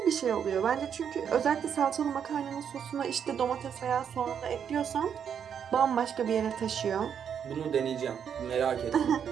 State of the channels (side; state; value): left; quieter; 8.0 dB